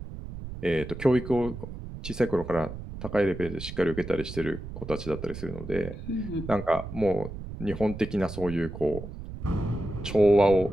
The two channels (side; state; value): right; noise; rumble, 10 dB below the sound